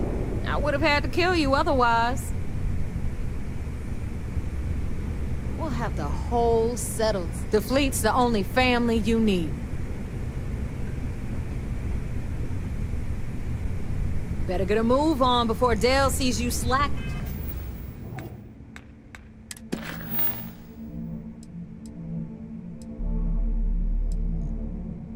I would have had to kill you otherwise. We'll have the whole settled. The fleet's the only family you need. Better get a move on before Dale sees you slack.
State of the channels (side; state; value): both; identical; correlation 1.00